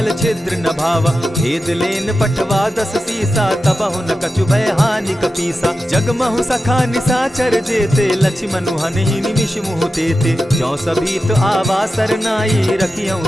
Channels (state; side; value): normal; both; correlation 0.91